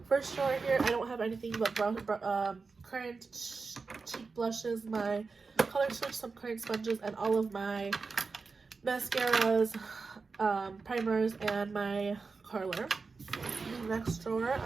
First drawer here, I don't have anything but current cheek blushes, my Color Switch, some current sponges, and all of my mascaras, primers, and my curler. Next drawer,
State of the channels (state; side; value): quieter; left; 4.5 dB